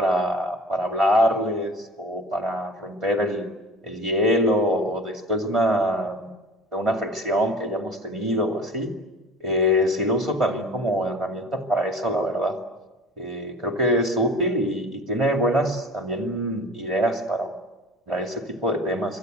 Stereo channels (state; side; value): normal; both; correlation 0.41